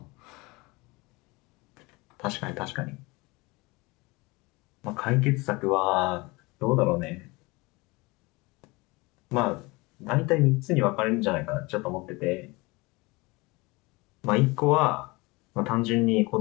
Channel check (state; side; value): quieter; right; 24.4 dB